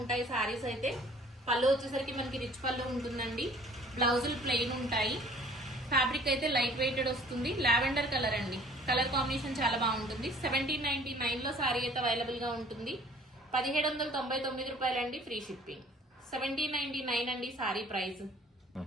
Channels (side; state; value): both; normal; correlation 0.53